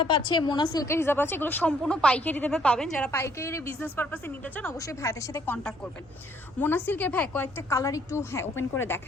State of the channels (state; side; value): normal; both; correlation 0.65